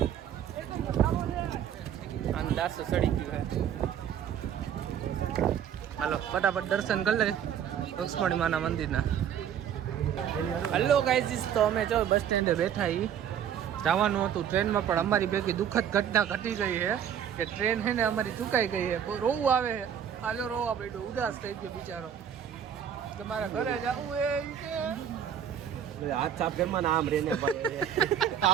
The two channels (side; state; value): left; quieter; 9.1 dB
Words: આમ 400 સડી ગયું છે. હાલો ફટાફટ દર્શન કરી લે રૂક્ષ્મણી માના મંદિરના. હલો ગાઈઝ, તો અમે જો બસ સ્ટેન્ડે બેઠા છીએ. જવાનું હતું ટ્રેનમાં પણ અમારી ભેગી દુઃખદ ઘટના ઘટી ગઈ છે કે ટ્રેન છે ને અમારી ચૂકાઈ ગઈ છે. રોવું આવે છે. હાલો રોવા બેઠો ઉદાસ થઈ ગયો બિચારો. તમારા ઘરે જવું એ હાથ સાફ ઘરમાં આમ રેને પડે.